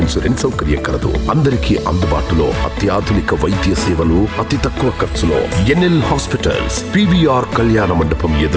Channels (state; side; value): identical; both; correlation 1.00